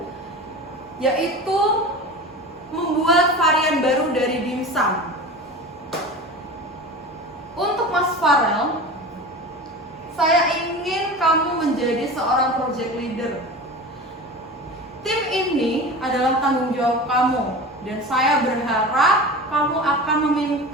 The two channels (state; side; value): normal; both; correlation 0.32